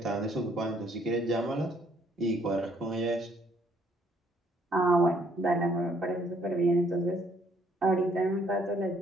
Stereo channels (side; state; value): both; normal; correlation 0.66